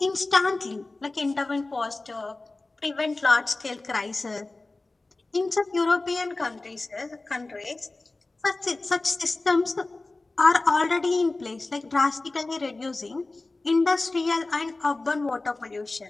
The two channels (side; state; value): right; quieter; 3.2 dB